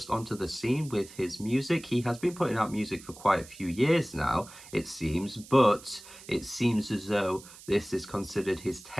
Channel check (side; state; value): right; noise; hiss, 18 dB below the sound